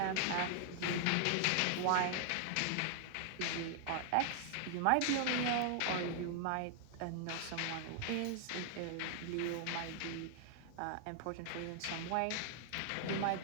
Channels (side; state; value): both; different; correlation 0.00